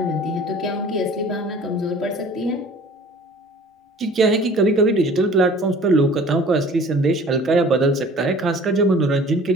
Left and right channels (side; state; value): both; normal; correlation 0.48